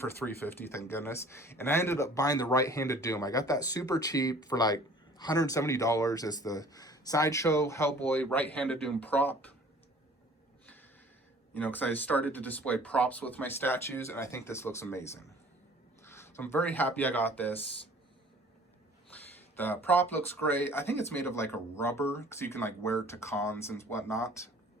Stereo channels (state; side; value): normal; both; correlation 0.50